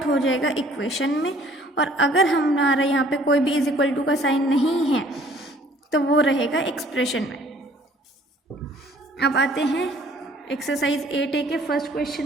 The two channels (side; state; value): both; normal; correlation 0.56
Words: हो जाएगा इक्वेशन में, और अगर हमारा यहाँ पे कोई भी = का साइन नहीं है तो वो रहेगा एक्सप्रेशन में। अब आते हैं एक्सरसाइज 8A के फर्स्ट